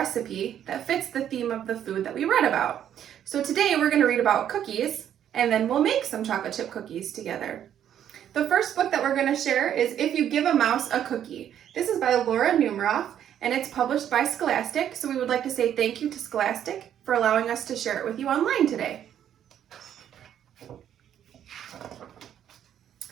that fits the theme of the food that we read about. So today we're going to read about cookies, and then we'll make some chocolate chip cookies together. The first book that we're going to share is If You Give a Mouse a Cookie. This is by Laura Numeroff, and it's published by Scholastic, so we would like to say thank you to Scholastic for allowing us to share it with you online today.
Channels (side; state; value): left; quieter; 10.0 dB